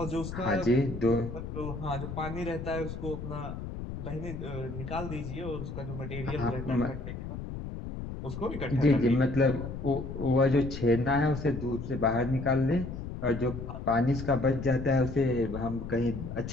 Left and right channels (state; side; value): noise; left; rumble, 7 dB below the sound